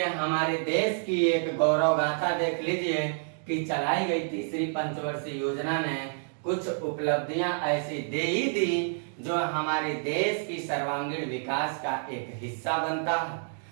देश की एक गौरव गाथा देख लीजिए कि चलाई गई तीसरी पंचवर्षीय योजना ने कुछ उपलब्धियां ऐसी दे ही दी जो हमारे देश की सर्वांगीण विकास का एक हिस्सा बनता है।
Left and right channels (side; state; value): left; silent; digital silence